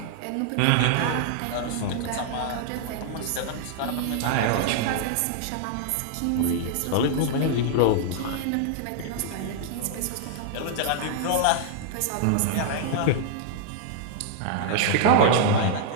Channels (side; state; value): both; different; correlation -0.01